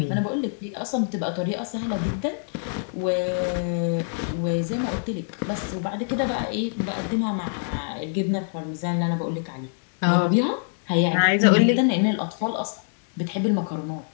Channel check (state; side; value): silent; right; digital silence